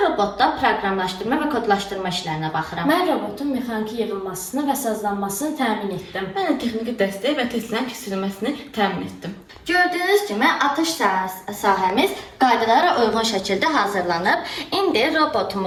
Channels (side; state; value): both; identical; correlation 1.00